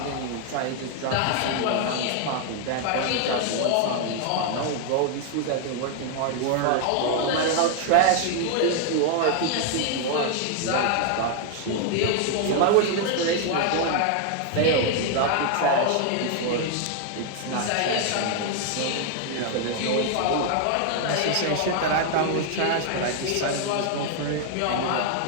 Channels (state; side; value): different; both; correlation 0.00